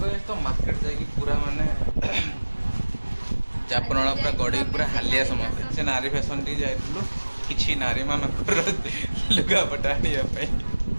तो मार्केट जाएगी पूरा माने जापनला पूरा गड़ी पूरा हालिया समस्या से नारी फैशन टी जाइतलु किछि नारी मानकर लुगा पटानिया पे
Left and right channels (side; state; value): both; inverted; correlation -1.00